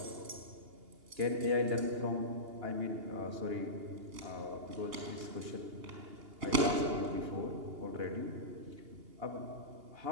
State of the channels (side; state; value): left; late; 2.8 ms